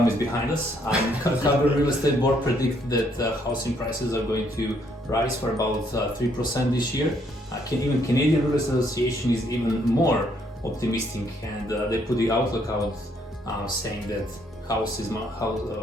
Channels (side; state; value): both; normal; correlation 0.69